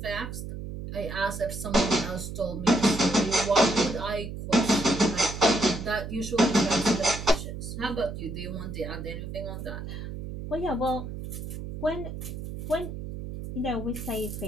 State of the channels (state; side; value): noise; right; hum, 8 dB below the sound